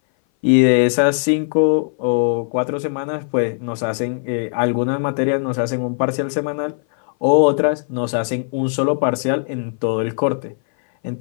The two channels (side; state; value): right; silent; 59 dB below the other